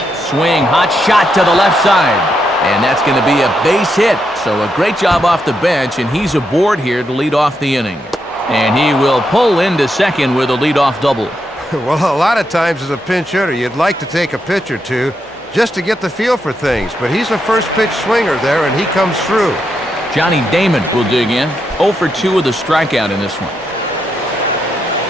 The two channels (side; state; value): both; normal; correlation 0.82